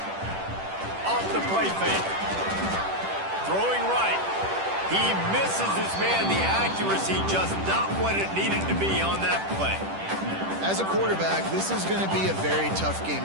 Off the play fake. Throwing right. He misses his man. The accuracy just not what it needed to be on that play. As a quarterback, this is going to be a very tough game.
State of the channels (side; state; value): left; late; 10 ms